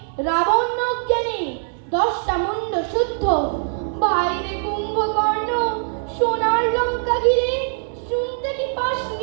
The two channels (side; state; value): left; silent; 64 dB below the other